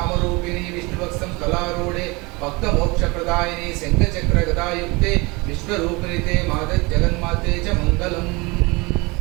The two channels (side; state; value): left; quieter; 25.6 dB